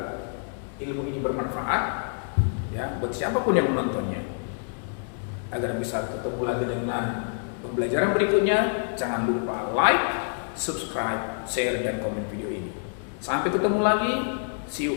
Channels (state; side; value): silent; right; digital silence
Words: ilmu ini bermanfaat ya buat siapapun yang menontonnya. Agar bisa ketemu lagi dengan pembelajaran berikutnya, jangan lupa like, subscribe, share dan komen video ini. Sampai ketemu lagi. See you